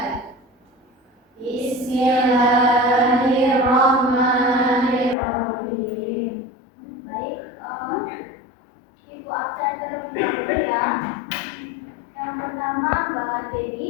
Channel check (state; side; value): drops out; right; at 5.2 s